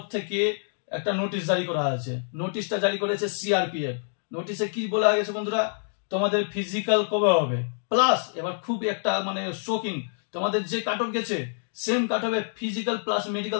থেকে একটা নোটিশ জারি করা আছে। নোটিশটা জারি করেছে সিআরপিএফ। নোটিশে কি বলা গেছে বন্ধুরা, তোমাদের ফিজিক্যাল কবে হবে, প্লাস এবার খুব একটা মানে শোকিং, তোমাদের যে কাট অফ গেছে সেম কাট অফে ফিজিক্যাল প্লাস মেডিকেল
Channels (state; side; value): silent; right; digital silence